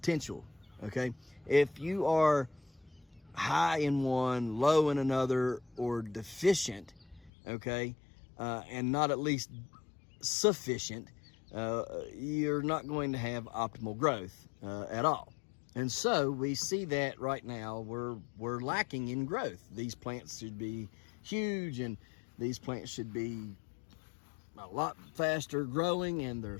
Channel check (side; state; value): right; drops out; at 7.3 s